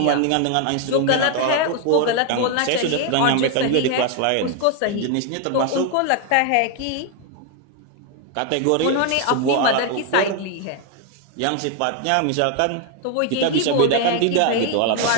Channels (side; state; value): both; different; correlation 0.01